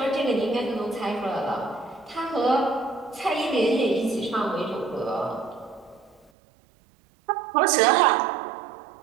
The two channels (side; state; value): left; drops out; at 6.3 s